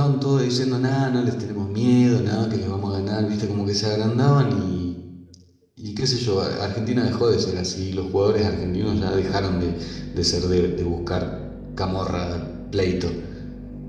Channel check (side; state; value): both; identical; correlation 1.00